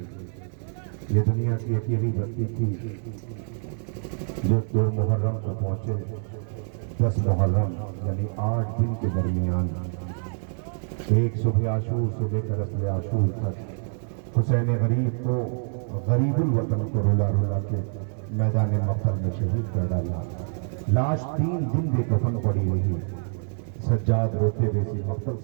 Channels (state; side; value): silent; left; 61 dB below the other